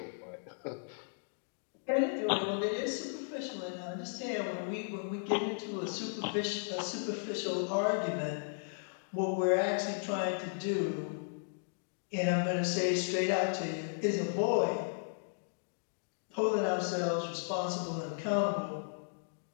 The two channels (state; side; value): silent; right; digital silence